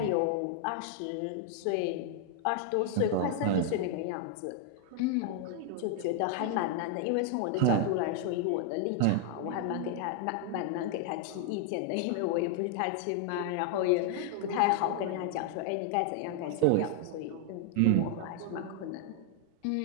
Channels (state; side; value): different; both; correlation 0.00